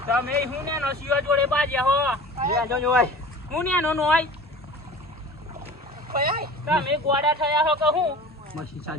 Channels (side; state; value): both; normal; correlation 0.39